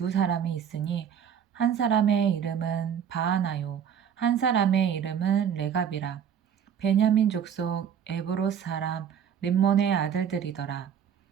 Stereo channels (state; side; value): quieter; left; 8.3 dB